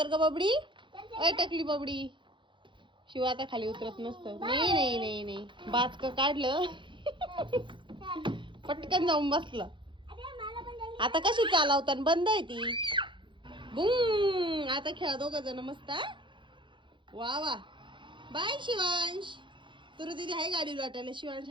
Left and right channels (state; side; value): late; left; 0.23 ms